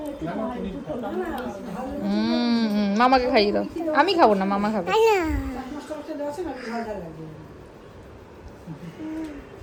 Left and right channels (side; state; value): both; identical; correlation 1.00